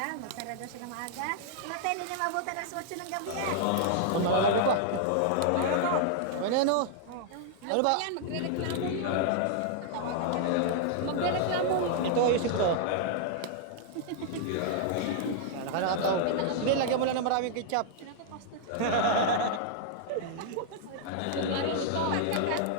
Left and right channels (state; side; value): different; both; correlation -0.01